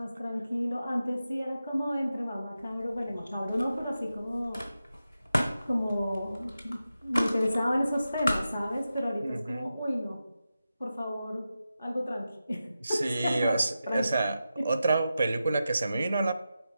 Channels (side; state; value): both; inverted; correlation -0.91